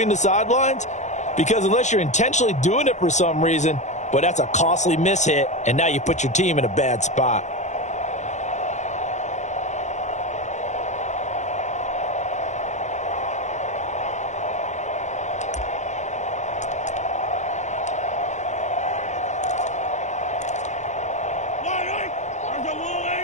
the sidelines? Because unless you're intentionally doing it for some reason, but that's a costly mishit, and now you put your team in a bad spot.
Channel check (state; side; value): late; right; 0.34 ms